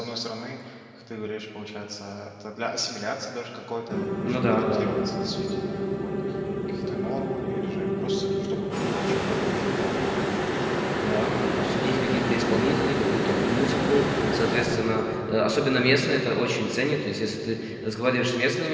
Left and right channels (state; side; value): identical; both; correlation 1.00